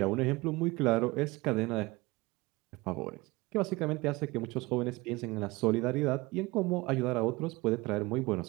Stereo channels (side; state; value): left; quieter; 22.3 dB